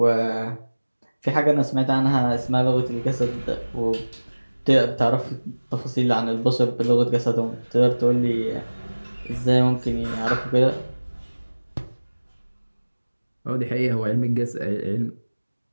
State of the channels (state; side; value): inverted; both; correlation -1.00